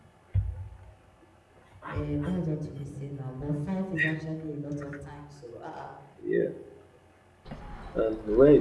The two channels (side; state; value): both; identical; correlation 1.00